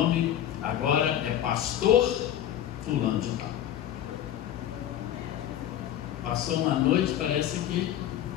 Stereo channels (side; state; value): right; quieter; 11.1 dB